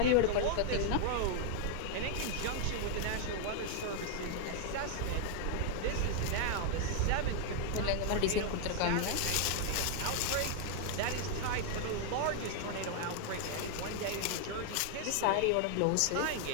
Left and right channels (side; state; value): both; different; correlation 0.00